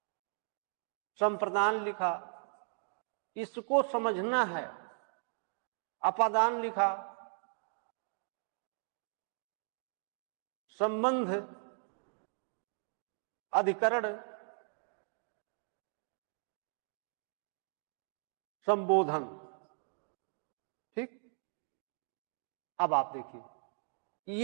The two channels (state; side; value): silent; left; digital silence